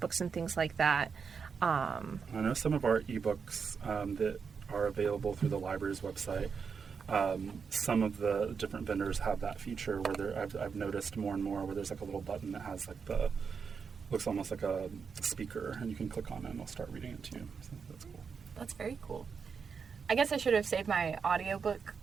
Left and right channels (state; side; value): quieter; left; 5.9 dB